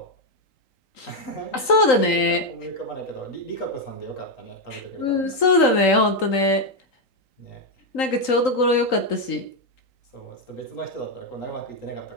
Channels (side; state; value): right; late; 3.9 ms